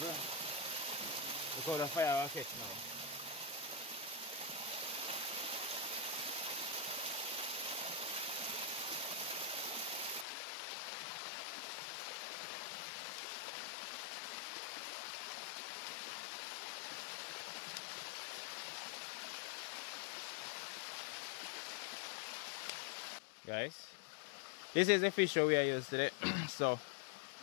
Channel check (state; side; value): drops out; right; at 10.2 s